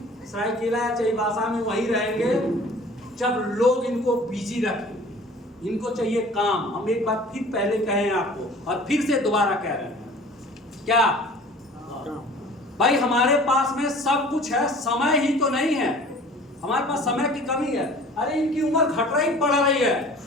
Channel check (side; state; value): both; normal; correlation 0.46